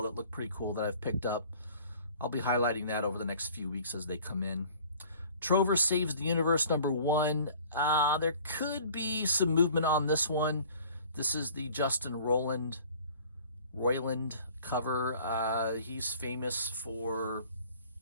that look pretty cool that I've picked up. I'll be highlighting that over the next few weeks as they come in. Trover Saves the Universe #1. There could be some movement on this one. This is the Justin Roiland cover. He's famous for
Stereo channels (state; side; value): inverted; both; correlation -0.50